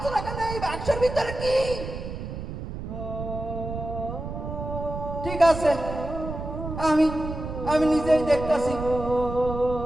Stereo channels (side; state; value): right; noise; rumble, 7 dB below the sound